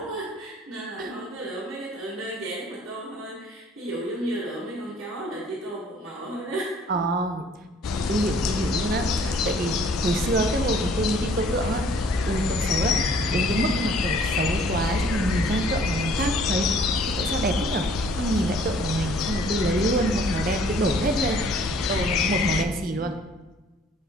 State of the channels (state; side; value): normal; both; correlation 0.57